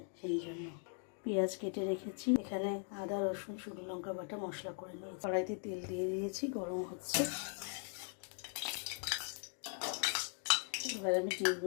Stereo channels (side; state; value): right; silent; 51 dB below the other